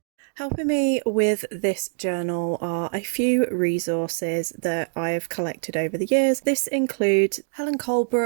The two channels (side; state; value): left; silent; digital silence